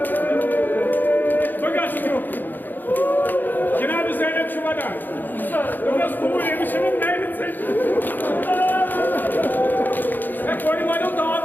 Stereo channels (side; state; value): right; late; 0.089 ms